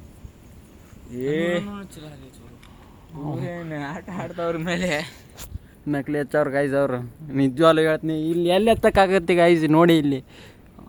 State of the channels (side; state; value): both; identical; correlation 1.00